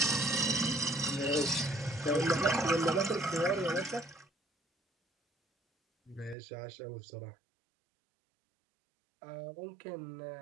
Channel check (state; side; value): drops out; left; at 6.4 s